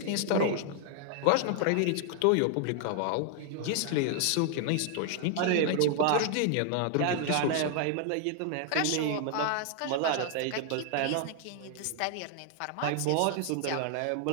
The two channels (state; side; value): different; both; correlation 0.00